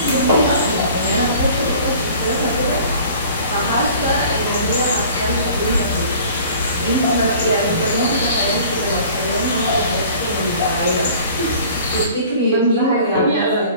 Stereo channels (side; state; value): both; inverted; correlation -0.48